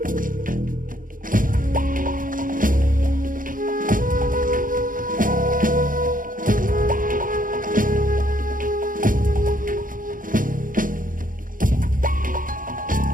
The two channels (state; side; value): late; left; 0.40 ms